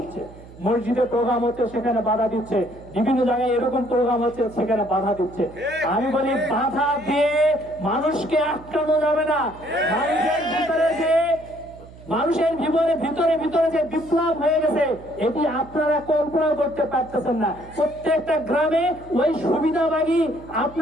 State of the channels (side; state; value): right; noise; hum, 19 dB below the sound